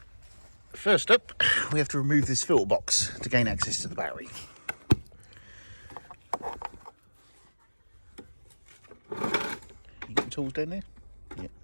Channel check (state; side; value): inverted; both; correlation -1.00